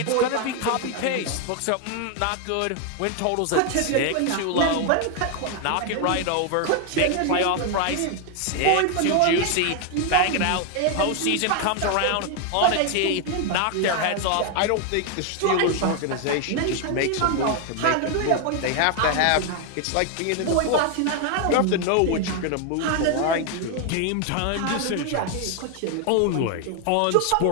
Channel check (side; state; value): both; different; correlation 0.01